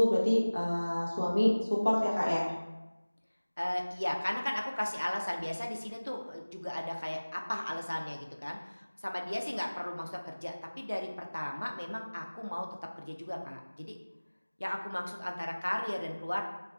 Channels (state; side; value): inverted; both; correlation -1.00